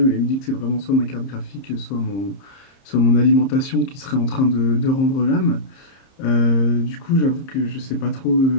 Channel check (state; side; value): late; right; 30 ms